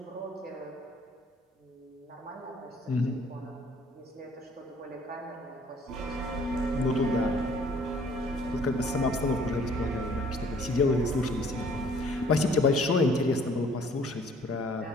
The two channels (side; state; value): both; normal; correlation 0.57